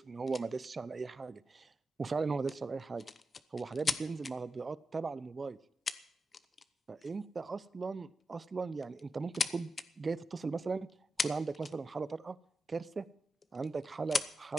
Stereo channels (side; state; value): both; normal; correlation 0.90